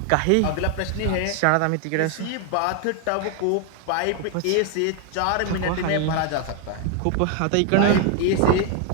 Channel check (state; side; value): different; both; correlation 0.01